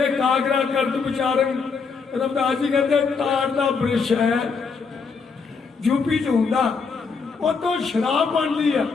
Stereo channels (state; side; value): quieter; right; 5.1 dB